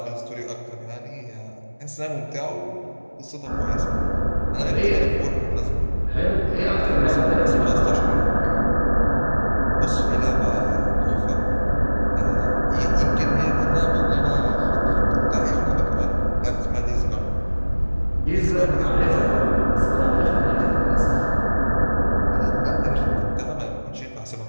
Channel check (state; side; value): inverted; both; correlation -1.00